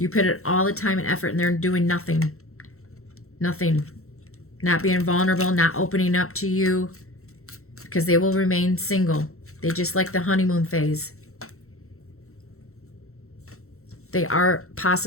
put it all the time and effort, and they're doing nothing. Nothing. Not being vulnerable, not opening up to you, because they will remain single. They just like the honeymoon phase. They are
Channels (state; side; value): late; right; 0.63 ms